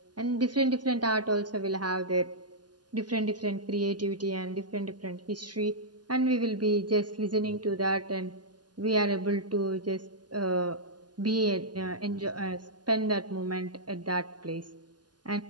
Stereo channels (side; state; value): left; late; 0.70 ms